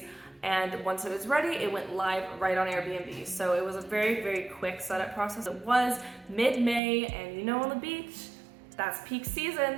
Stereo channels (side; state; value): left; drops out; at 6.8 s